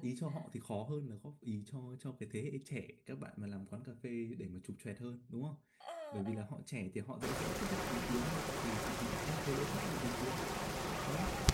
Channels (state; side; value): identical; both; correlation 1.00